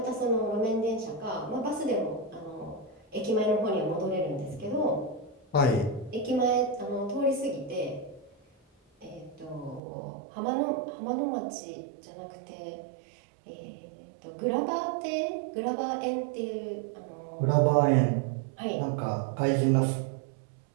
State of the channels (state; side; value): drops out; left; at 9.8 s